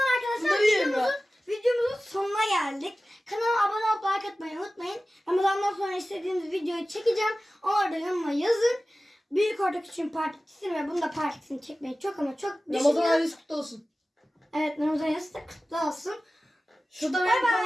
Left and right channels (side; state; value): both; normal; correlation 0.96